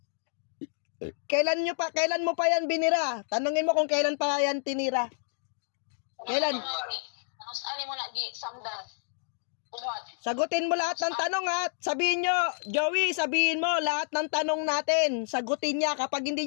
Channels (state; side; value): silent; right; digital silence